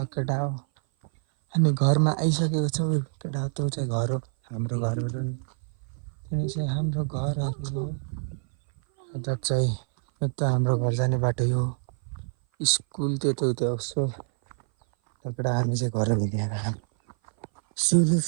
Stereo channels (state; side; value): silent; left; 57 dB below the other